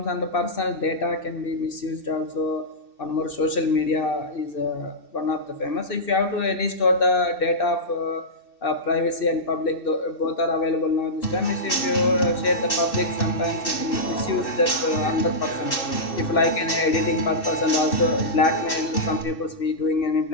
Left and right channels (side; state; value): right; late; 2.6 ms